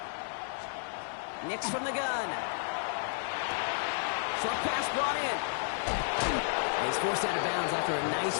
Nix from the gun. Short pass brought in. He's forced out of bounds after a nice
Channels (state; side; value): silent; right; 56 dB below the other